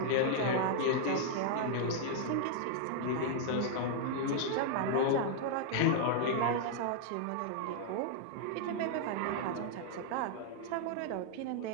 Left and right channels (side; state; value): both; different; correlation -0.01